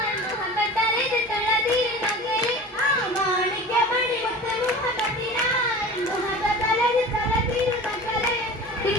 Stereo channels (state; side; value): normal; both; correlation 0.37